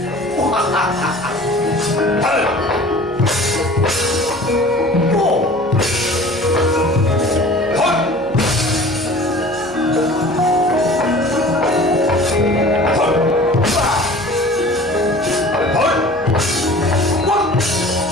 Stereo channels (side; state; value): left; noise; hum, 26 dB below the sound